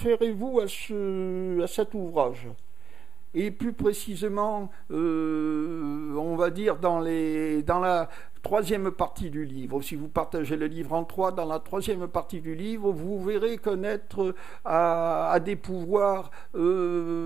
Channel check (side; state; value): left; quieter; 6.2 dB